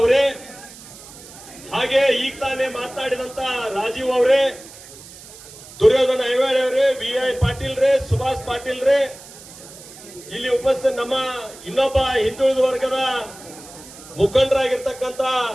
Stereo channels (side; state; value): right; noise; hiss, 18 dB below the sound